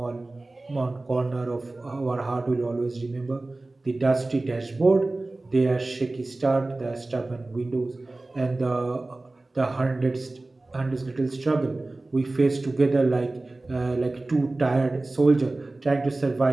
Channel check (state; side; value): quieter; left; 3.0 dB